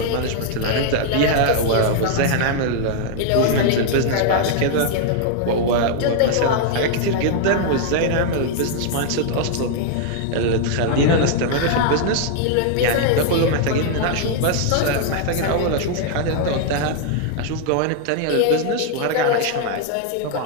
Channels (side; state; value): both; different; correlation 0.00